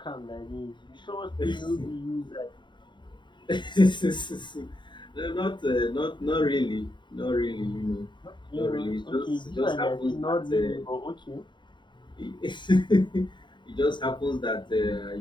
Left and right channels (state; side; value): late; right; 0.23 ms